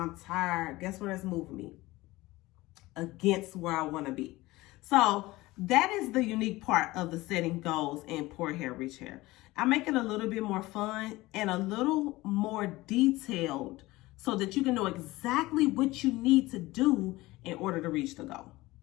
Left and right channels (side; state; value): right; quieter; 19.5 dB